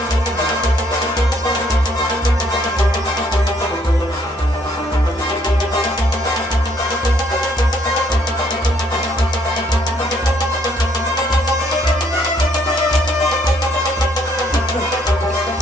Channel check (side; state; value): both; normal; correlation 0.68